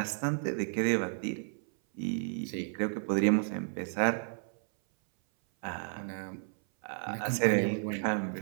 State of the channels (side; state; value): left; silent; 56 dB below the other